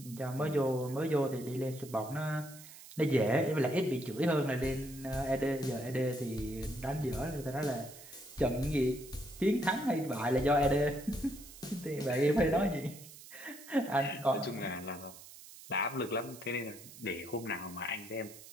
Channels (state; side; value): noise; right; hiss, 17 dB below the sound